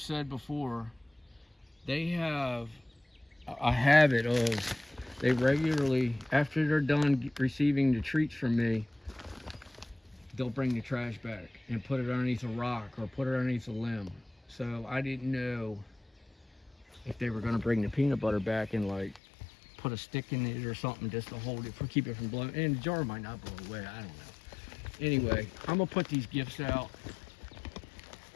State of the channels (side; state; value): right; drops out; at 19.2 s